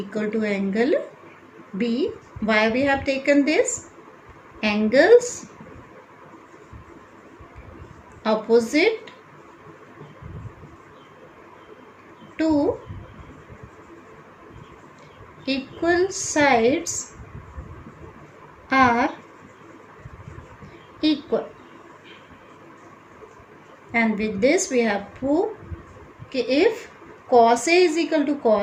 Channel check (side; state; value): both; identical; correlation 1.00